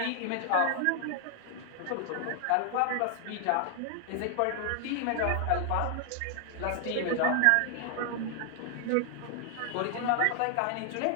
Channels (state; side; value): different; both; correlation 0.00